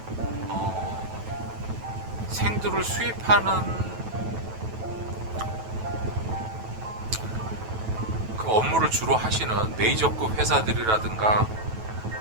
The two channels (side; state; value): left; late; 9.2 ms